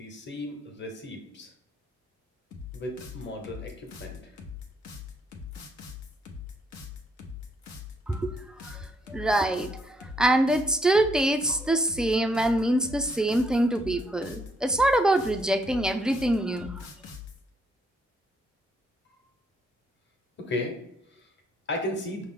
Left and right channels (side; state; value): both; normal; correlation 0.72